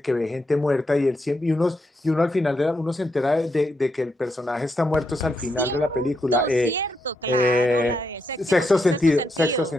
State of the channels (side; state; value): both; normal; correlation 0.81